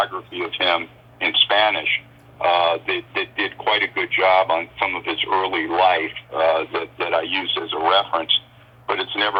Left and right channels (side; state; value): both; identical; correlation 1.00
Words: of him in Spanish. That did quite a good job on some of his early life that I use as a reference, but it's